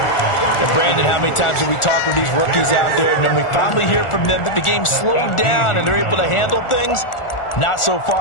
Brandon, how many times have we talked with these rookies out there, and then we finally hear from them that the game slowed down and they're able to handle things? Not so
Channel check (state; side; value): late; right; 1.4 ms